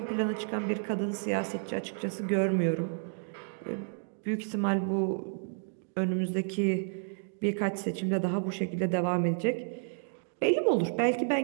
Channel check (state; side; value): silent; left; digital silence